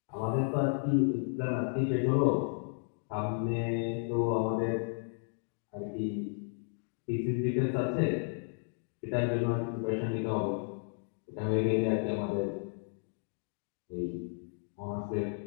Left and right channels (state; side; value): silent; right; digital silence